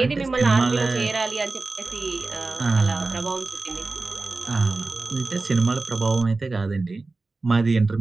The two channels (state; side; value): quieter; left; 3.6 dB